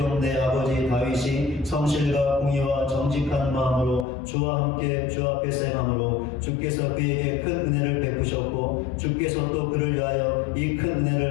내 아버지 다윗이 성실과 공의와 정직한 마음으로 주와 함께 주 앞에서 행함으로 주께서 그에게 큰 은혜를 베푸셨고 주께서 또 그를 위하여 이 큰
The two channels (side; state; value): right; drops out; at 4.0 s